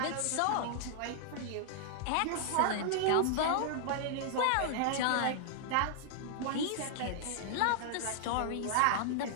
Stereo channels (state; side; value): different; both; correlation -0.01